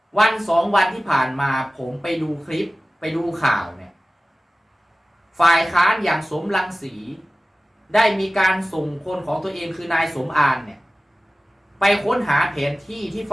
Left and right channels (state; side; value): normal; both; correlation 0.97